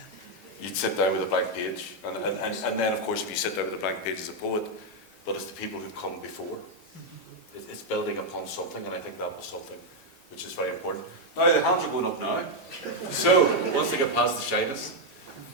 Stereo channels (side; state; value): both; normal; correlation 0.01